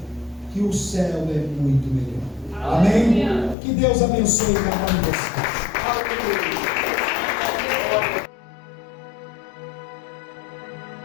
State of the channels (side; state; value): right; drops out; at 3.6 s